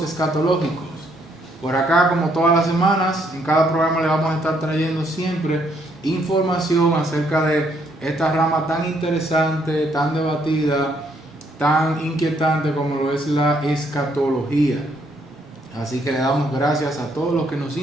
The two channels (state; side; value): normal; both; correlation 0.71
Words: Escatológicos. Por acá, como todas las semanas, en cada programa le vamos a estar trayendo siempre información acerca de esta rama tan interesante, tan debatida, tan inquietante como lo es la escatología. Así que le damos gracias a todos los que nos